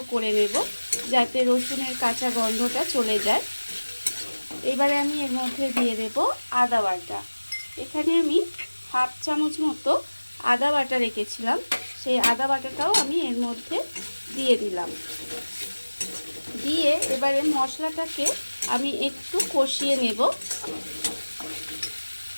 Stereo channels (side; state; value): both; inverted; correlation -1.00